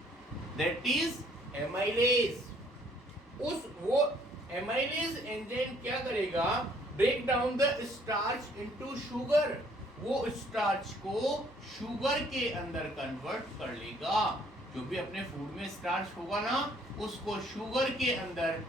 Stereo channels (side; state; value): both; normal; correlation 0.62